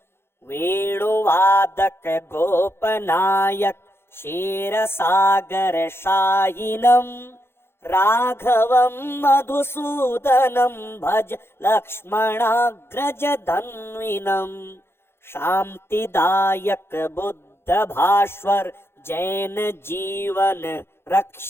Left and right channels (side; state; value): right; late; 0.12 ms